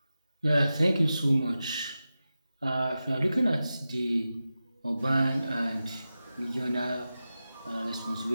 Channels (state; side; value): inverted; both; correlation -0.93